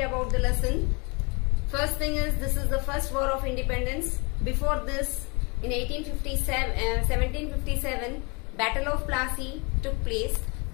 about the lesson. First thing is, this is the first war of independence. Before this, in 1757, Battle of Plassey took place,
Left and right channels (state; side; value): quieter; right; 30.2 dB